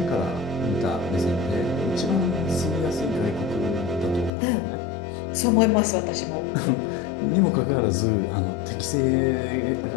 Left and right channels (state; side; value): drops out; right; at 4.3 s